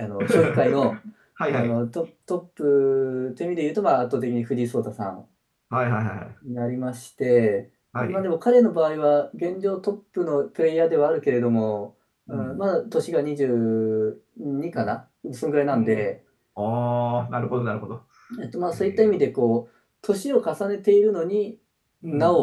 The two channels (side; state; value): both; identical; correlation 1.00